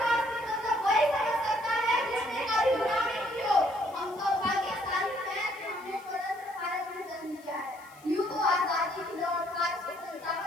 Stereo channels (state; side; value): noise; left; hiss, 25 dB below the sound